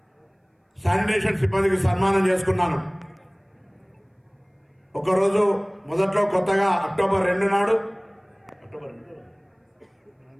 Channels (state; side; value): identical; both; correlation 1.00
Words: శానిటేషన్ సిబ్బందికి సన్మానం చేసుకున్నాను. ఒకరోజు మొదట్లో కొత్తగా అక్టోబర్ 2 నాడు